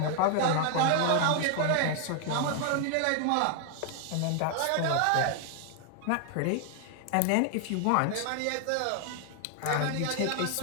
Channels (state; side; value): different; both; correlation 0.00